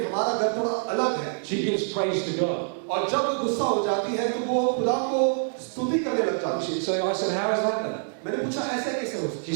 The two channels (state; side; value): silent; left; 61 dB below the other